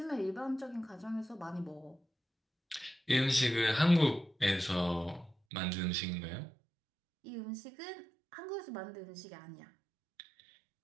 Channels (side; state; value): left; drops out; at 5.4 s